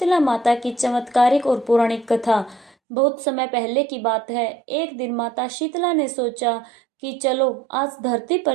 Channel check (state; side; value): drops out; left; at 2.8 s